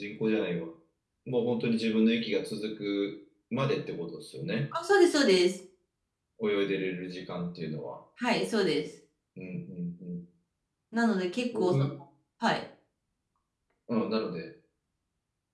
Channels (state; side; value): identical; both; correlation 1.00